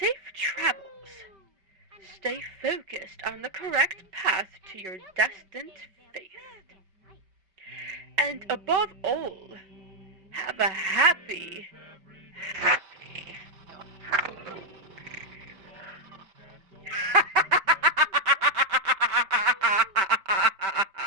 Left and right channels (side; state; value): left; late; 5.3 ms